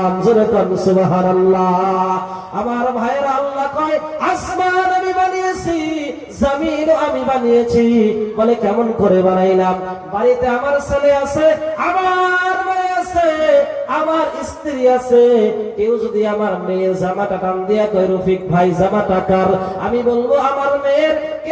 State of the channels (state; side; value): identical; both; correlation 1.00